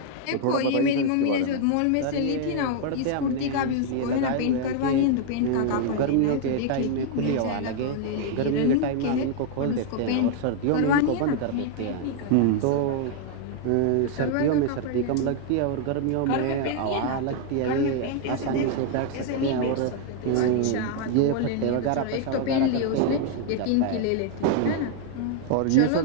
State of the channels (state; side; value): different; both; correlation 0.00